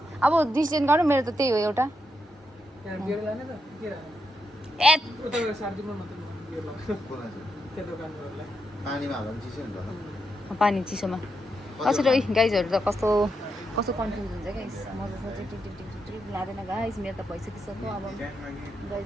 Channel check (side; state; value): both; normal; correlation 0.83